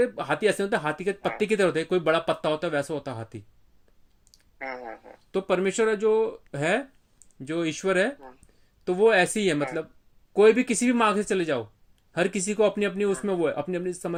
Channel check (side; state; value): both; identical; correlation 1.00